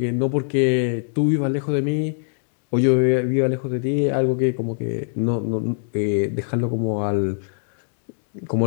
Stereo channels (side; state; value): right; silent; digital silence